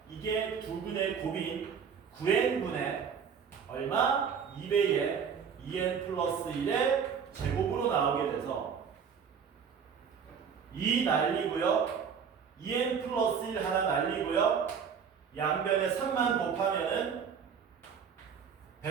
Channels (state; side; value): quieter; left; 6.9 dB